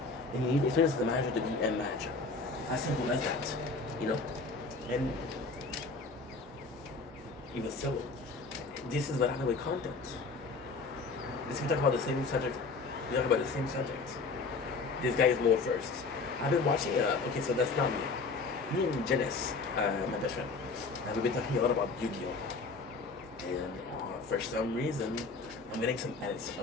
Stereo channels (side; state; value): right; quieter; 4.1 dB